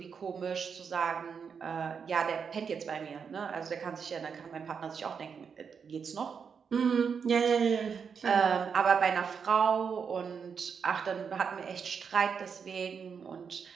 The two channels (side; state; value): left; quieter; 6.4 dB